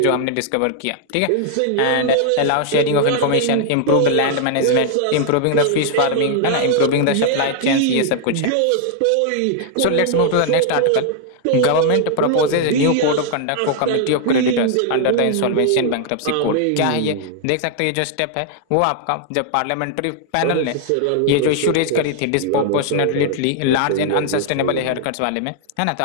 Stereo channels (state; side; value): different; both; correlation 0.00